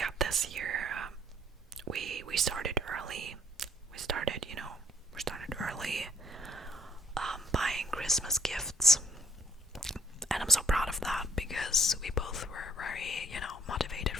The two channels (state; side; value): normal; both; correlation 0.64